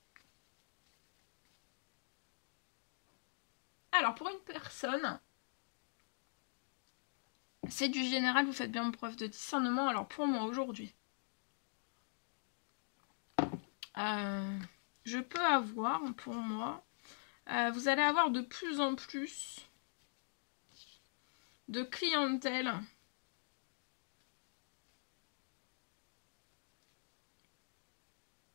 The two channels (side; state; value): right; silent; digital silence